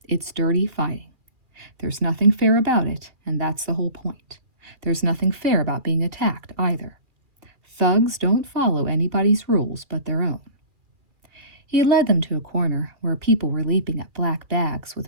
It's dirty fighting. There's nothing fair about it, and that's the whole point. There's nothing fair about being attacked either. Thugs don't follow anybody's rules but their own. He led them to a corner where people were leaping at black bags with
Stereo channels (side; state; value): left; late; 2.4 ms